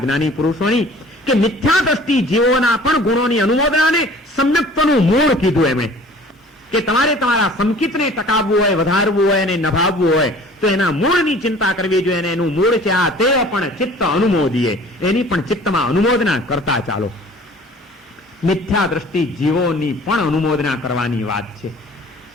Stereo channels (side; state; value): both; normal; correlation 0.48